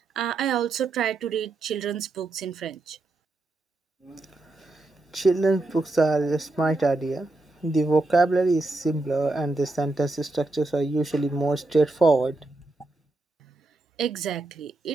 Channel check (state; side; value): quieter; left; 3.0 dB